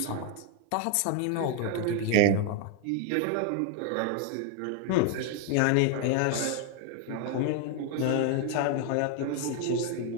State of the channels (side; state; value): both; different; correlation 0.01